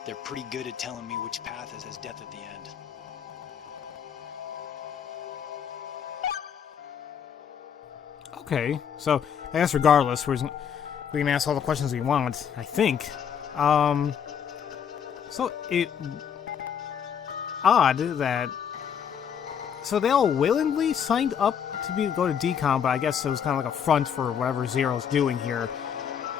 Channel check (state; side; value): quieter; right; 8.0 dB